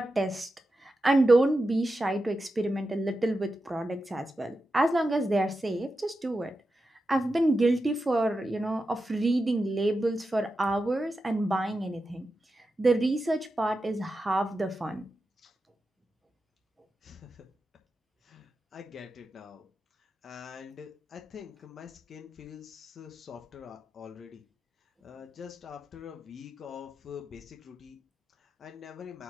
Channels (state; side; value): normal; both; correlation 0.90